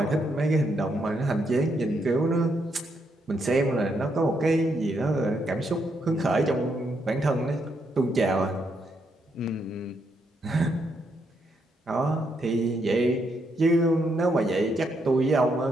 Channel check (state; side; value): normal; both; correlation 0.77